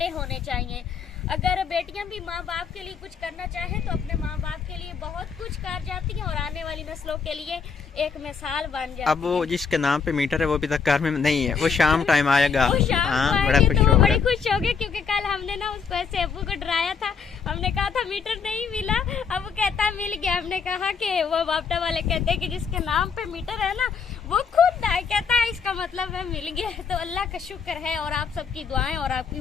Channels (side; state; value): right; quieter; 5.8 dB